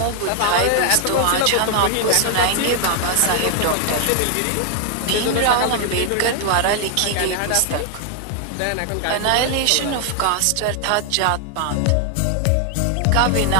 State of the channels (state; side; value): different; both; correlation 0.00